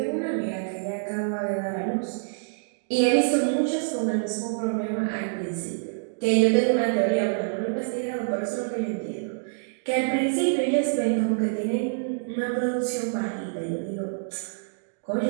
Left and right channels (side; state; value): left; silent; digital silence